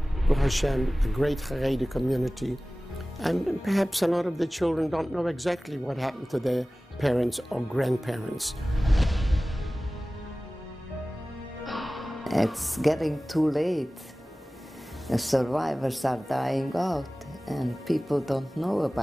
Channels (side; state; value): both; normal; correlation 0.97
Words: Baruch Hashem, a great Haredi community, and perhaps a lot of the children don't know exactly what happened to their parents or grandparents. It's getting too late. The survivors are dying out, and people don't know